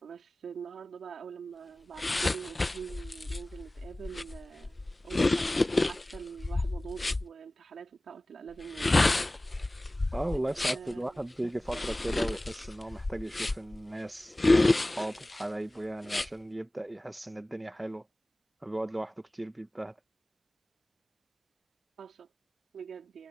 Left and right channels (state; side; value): normal; both; correlation 0.98